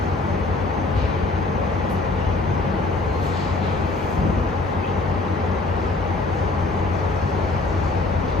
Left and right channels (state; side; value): quieter; right; 3.2 dB